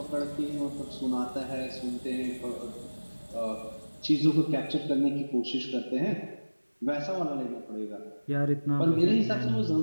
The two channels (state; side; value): inverted; both; correlation -1.00